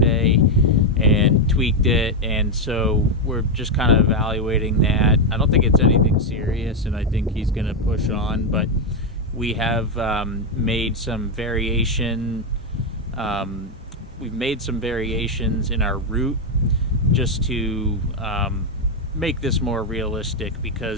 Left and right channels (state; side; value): normal; both; correlation 0.04